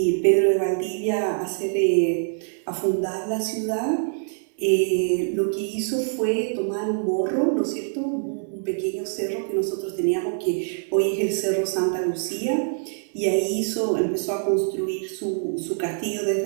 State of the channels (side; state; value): left; silent; 62 dB below the other